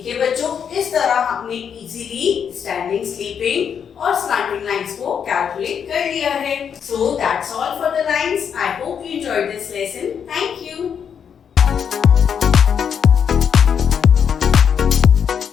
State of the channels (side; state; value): right; quieter; 7.6 dB